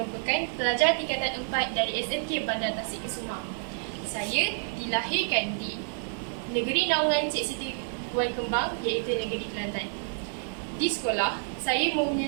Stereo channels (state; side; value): silent; left; digital silence